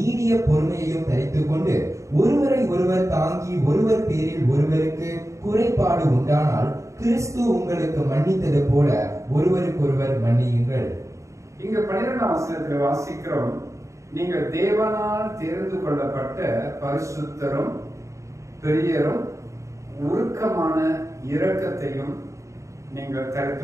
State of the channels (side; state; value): left; late; 0.15 ms